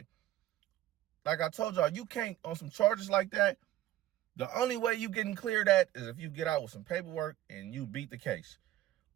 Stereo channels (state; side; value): quieter; left; 14.3 dB